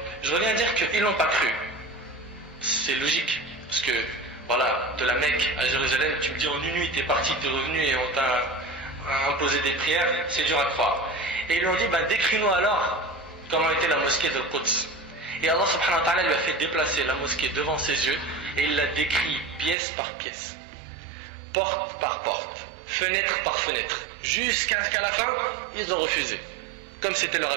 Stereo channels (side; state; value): left; drops out; at 19.8 s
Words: je reviens à dire qu'ils n'ont pas cru. C'est logique. Parce que voilà, de la Mecque à Jérusalem, tu me dis en une nuit t'es parti, t'es revenu et on t'a imposé des prières, c'est dur à croire. Et ils lui ont dit, décris-nous alors comment était la mosquée de Quds. Et Allah subhanahu wa ta'ala lui a fait déplacer la mosquée devant ses yeux et il l'a décrit pièce par pièce, porte par porte, fenêtre par fenêtre, jusqu'à ce qu'à la fin, ils ont refusé, comme c'était leur